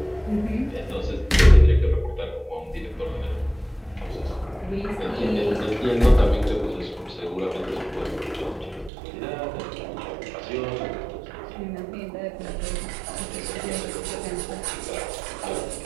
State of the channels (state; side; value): drops out; left; at 8.9 s